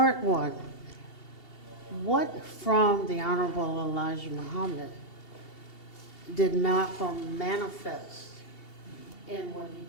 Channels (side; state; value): right; late; 2.7 ms